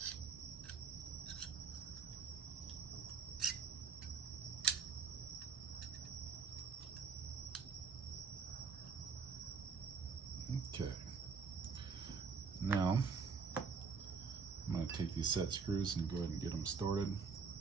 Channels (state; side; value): quieter; left; 5.4 dB